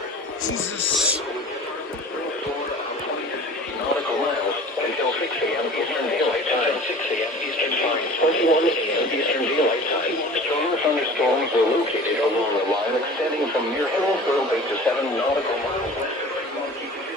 Jesus. Nautical miles until 6 a.m. Eastern Daylight Time. 6 a.m. Eastern Time. 21 a.m. Eastern Daylight Time. Stronger thunderstorms were located along the line extending from near Hillsborough Bay to 7 nautical miles west.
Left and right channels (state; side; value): normal; both; correlation 0.42